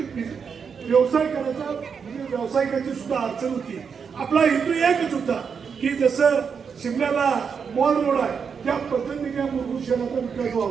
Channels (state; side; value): quieter; left; 6.3 dB